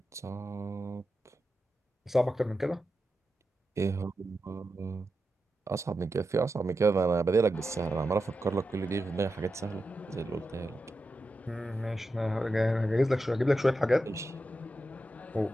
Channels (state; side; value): normal; both; correlation 0.89